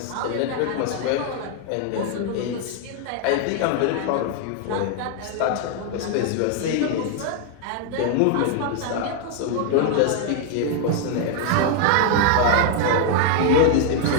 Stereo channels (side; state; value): both; different; correlation 0.00